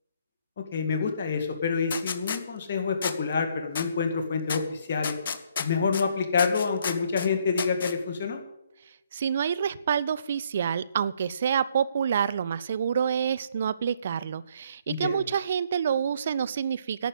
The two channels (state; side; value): inverted; both; correlation -0.67